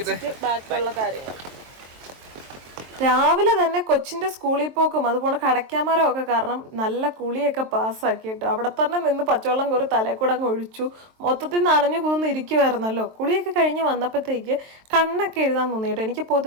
ബാക്കിയുള്ള കാര്യങ്ങൾ. രാവിലെ തന്നെ കൊച്ചിൻ്റെ സ്കൂളിൽ പോക്കും അതുപോലെ കടയ്ക്കാമരം ഒക്കെ കാരണം നല്ല കുളിയൊക്കെ പാസ്സാക്കി കേട്ടോ. അവിടെ തന്നെ നിന്ന് പച്ചവെള്ളം കോരി തലയിൽ കൂടെ അങ്ങ് ഒഴിച്ചു. മൊത്തത്തിൽ നനഞ്ഞു കുതിർന്ന് ഇരിക്കുമായിരുന്നല്ലോ. കുളിയൊക്കെ കഴിഞ്ഞ് വന്നപ്പോഴത്തേക്ക് കണ്ണൊക്കെ എഴുതാൻ തോന്നി കേട്ടോ. എനിക്ക്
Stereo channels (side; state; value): left; late; 23 ms